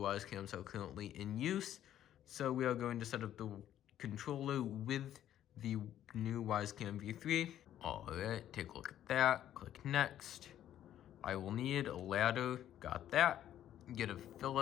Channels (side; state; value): right; quieter; 11.5 dB